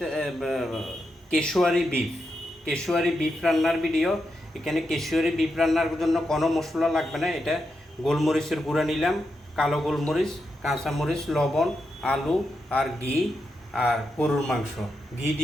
কেশুয়ারি বিফ রান্নার ভিডিও। এখানে কেশুয়ারি বিফ রান্নার জন্য কোনো মশলা লাগবে না। এটা গোলমরিচের গুঁড়া নিলাম, কালো গোলমরিচ, কাঁচামরিচ, লবণ, আলু আর ঘি আর গরুর মাংস। ঘি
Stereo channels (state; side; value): normal; both; correlation 0.85